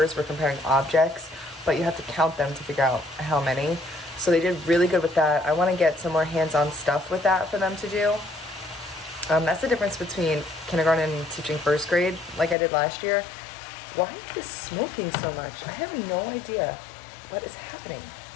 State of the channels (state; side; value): drops out; right; at 12.6 s